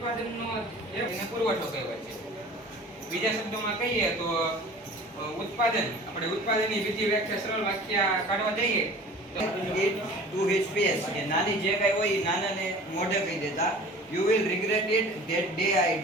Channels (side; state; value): both; normal; correlation 0.43